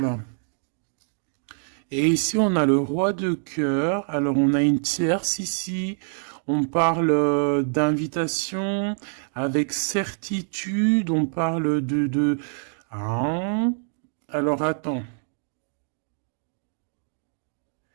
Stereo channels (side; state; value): left; silent; digital silence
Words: Et ici, on a le roi de cœur. Alors, on a une tierce ici. On parle d'invitation avec certitude. On parle Ah. Alors, attends.